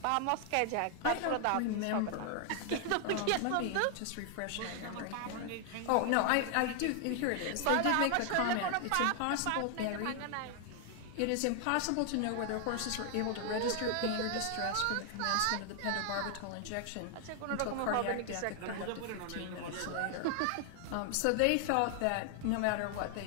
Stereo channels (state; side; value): different; both; correlation 0.00